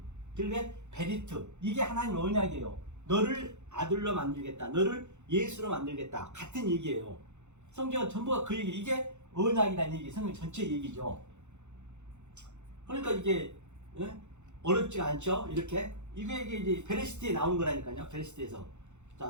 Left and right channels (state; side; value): late; left; 0.83 ms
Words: 그게 베리트. 이게 하나님의 언약이에요. 너를 아들로 만들겠다. 너를 예수로 만들겠다. 같은 얘기예요. 성경은 전부가 그 얘기. 이게 언약이라는 얘기. 성경 전체 얘기죠. 그러니까 이게 어렵지가 않죠. 이렇게 이게 이제 베레시트에 나온 거라니까요. 베레시트에서.